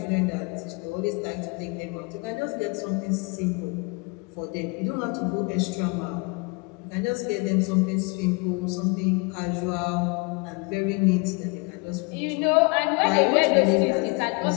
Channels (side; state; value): right; quieter; 29.0 dB